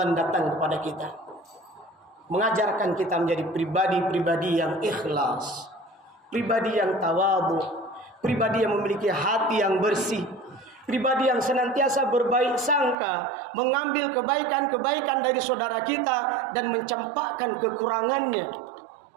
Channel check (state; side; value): drops out; left; at 13.0 s